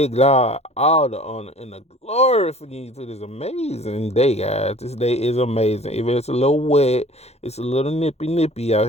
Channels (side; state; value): right; late; 0.31 ms